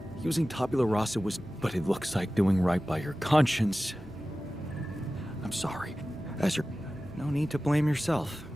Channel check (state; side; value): normal; both; correlation 0.96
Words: Using tabula rasa was... But it looks like doing right by your conscience. I'm sorry. No need to blame yourself.